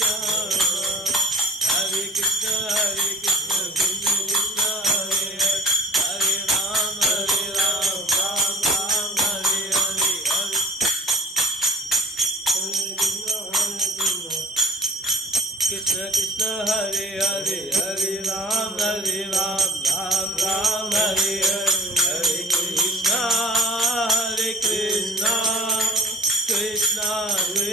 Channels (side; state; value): both; normal; correlation 0.45